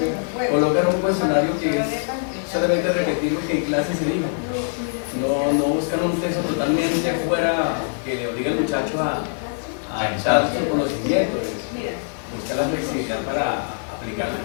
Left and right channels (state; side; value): silent; right; digital silence